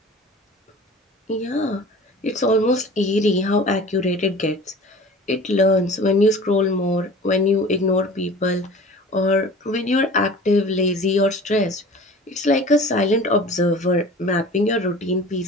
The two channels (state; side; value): normal; both; correlation 0.42